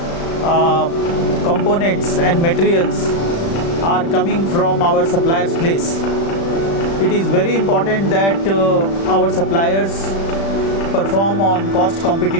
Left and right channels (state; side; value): late; right; 36 ms